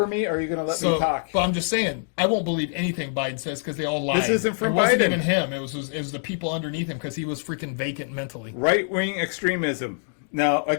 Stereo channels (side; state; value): right; silent; digital silence